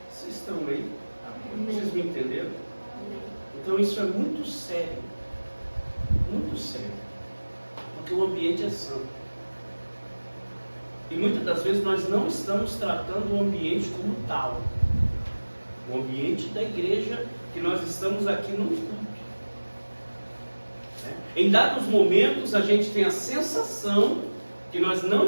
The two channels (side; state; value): both; inverted; correlation -1.00